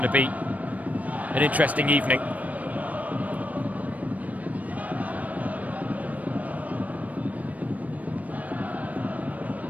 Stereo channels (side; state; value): left; late; 0.071 ms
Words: to be an interesting evening.